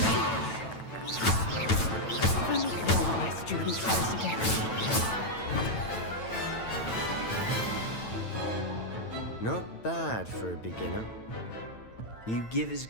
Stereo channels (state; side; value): late; right; 9.0 ms